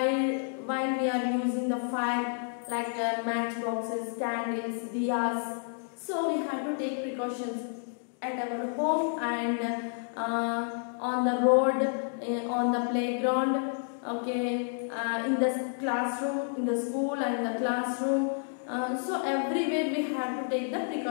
we are using the fire like matchboxes, candles, diyas, so we have to take precautions at our home and on the road, on the playground, okay, in the classroom, in the school and in the classroom. So everywhere we have to take the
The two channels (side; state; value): right; silent; digital silence